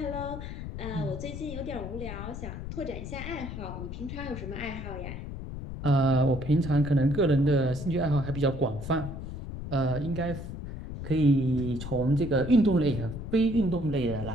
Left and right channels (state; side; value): noise; left; rumble, 8 dB below the sound